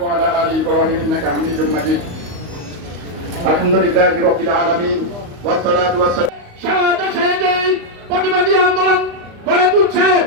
ওয়া আলা আলি ইব্রাহিম ইন্নাকা হামিদুম মাজিদ। আলহামদুলিল্লাহি রাব্বিল আলামিন ওয়াস সালাতু ওয়াস সালাম। সারা দেশে যে প্রতিবাদী আন্দোলন গড়ে তুলছে,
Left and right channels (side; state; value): left; late; 35 ms